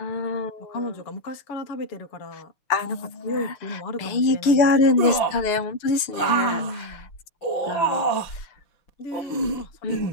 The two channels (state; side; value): late; right; 6.7 ms